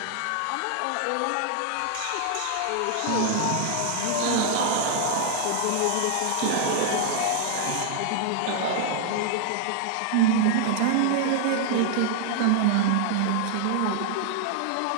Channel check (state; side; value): different; both; correlation 0.00